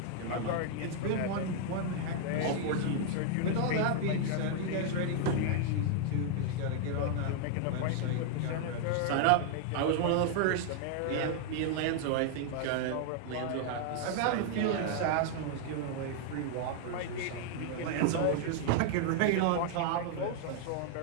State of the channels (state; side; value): different; both; correlation 0.00